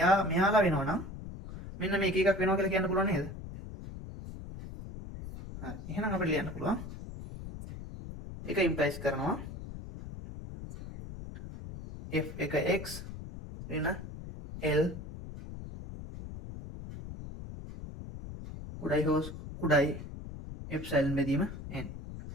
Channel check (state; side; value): noise; left; rumble, 11 dB below the sound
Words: මෙයාලා වෙනවා නම් මෙන්න මේක එකක් වෙනවා කියලා කියන්න පුළුවන් නේද? හරි. එහෙනම් අපිට ලියන්න පුළුවන්. ඒක ඉම්ප්ලයිස් කරනවා f එක x ඍණ l කුඩයි එප්සයිලන් බෙදීම n